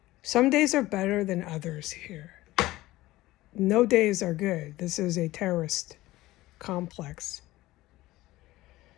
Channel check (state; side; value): quieter; right; 17.5 dB